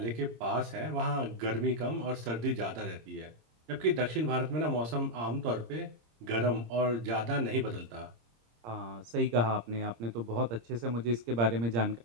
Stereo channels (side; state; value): left; late; 26 ms